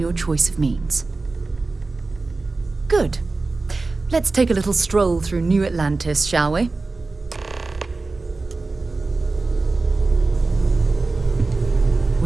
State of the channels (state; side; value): quieter; left; 3.6 dB